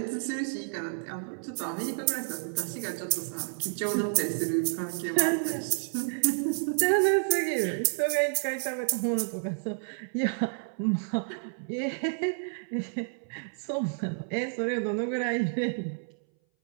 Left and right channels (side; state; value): left; silent; 58 dB below the other